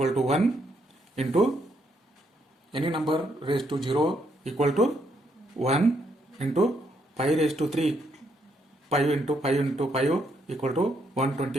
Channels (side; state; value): both; normal; correlation 0.75